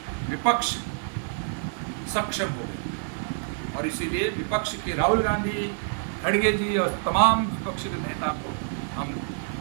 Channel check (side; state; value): left; silent; 58 dB below the other